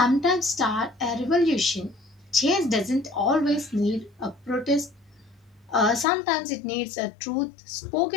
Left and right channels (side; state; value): right; drops out; at 6.1 s